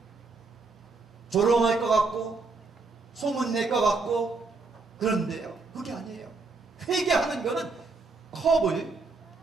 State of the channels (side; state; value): left; quieter; 4.0 dB